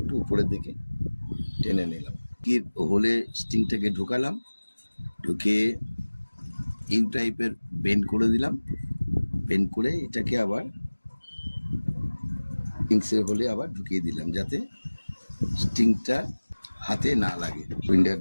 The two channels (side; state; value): both; inverted; correlation -1.00